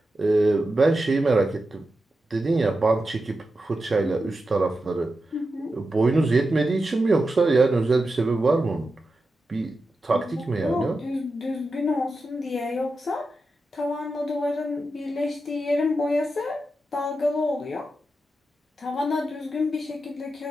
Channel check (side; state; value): both; normal; correlation 0.90